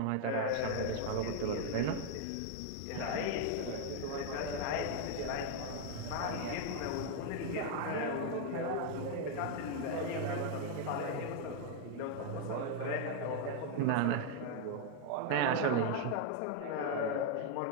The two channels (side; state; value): both; different; correlation 0.00